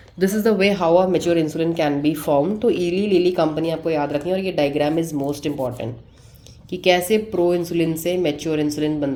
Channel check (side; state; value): both; identical; correlation 1.00